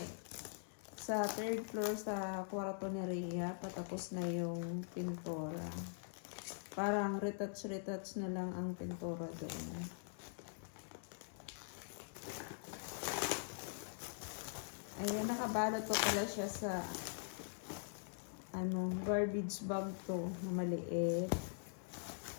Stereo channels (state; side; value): silent; right; digital silence